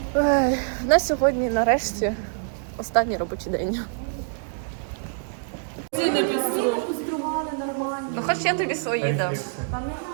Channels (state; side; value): silent; left; digital silence